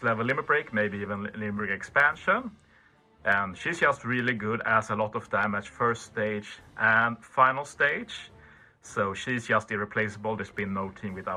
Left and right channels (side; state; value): both; identical; correlation 1.00